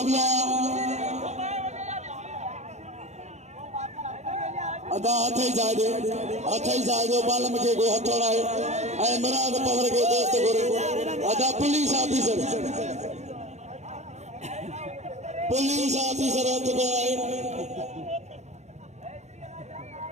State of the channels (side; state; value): left; late; 0.33 ms